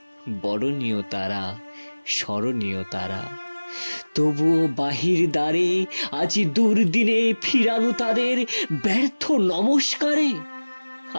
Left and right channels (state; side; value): inverted; both; correlation -1.00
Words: বরণীয় তারা, স্মরণীয় তারা। তবুও বাহির দ্বারে আজি দুর্দিনে ফিরানো তাদের ব্যর্থ নমস্কারে।